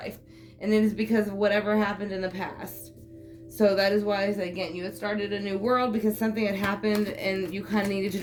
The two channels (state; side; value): identical; both; correlation 1.00